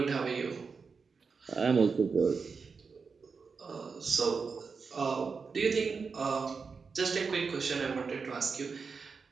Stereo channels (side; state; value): left; quieter; 5.1 dB